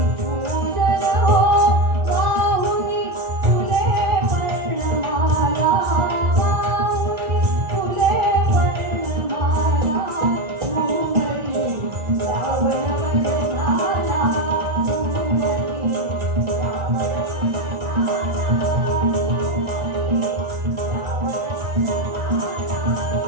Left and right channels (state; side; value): late; left; 1.9 ms